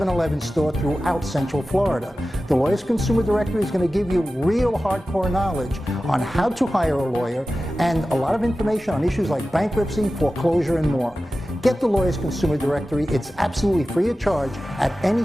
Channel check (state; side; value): normal; both; correlation 0.95